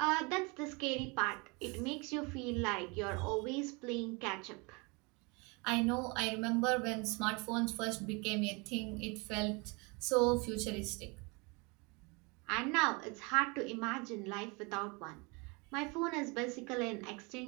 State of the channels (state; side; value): quieter; left; 29.2 dB